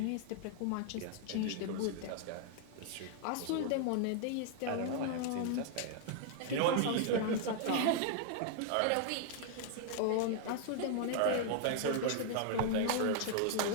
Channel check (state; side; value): different; both; correlation 0.00